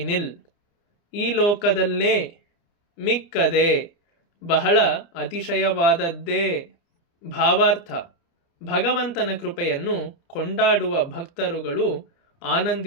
ಈ ಲೋಕದಲ್ಲೇ. ಮಿಕ್ಕದೆ, ಬಹಳ ಅತಿಶಯವಾದದ್ದೇ. ಭಾವಾರ್ಥ: ಭಗವಂತನ ಕೃಪೆಯನ್ನು ಕೊಂಡಾಡುವ ಭಕ್ತರುಗಳು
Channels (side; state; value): right; late; 29 ms